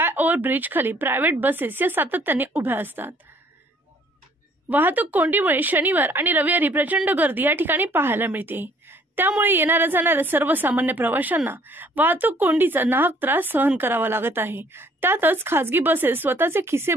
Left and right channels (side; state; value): both; normal; correlation 0.59